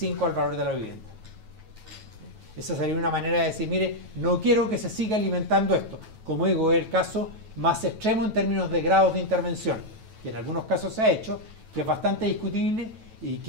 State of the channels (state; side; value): late; left; 9.2 ms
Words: al valor de la vivienda. Esa sería una manera de decir, mire, no quiero que se siga alimentando esto. Como digo, es el caso más extremo en términos de grados de intervención, que en algunos casos se ha hecho, que es bastante discutible y